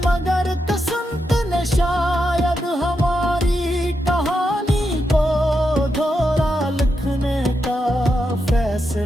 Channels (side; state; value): both; normal; correlation 0.85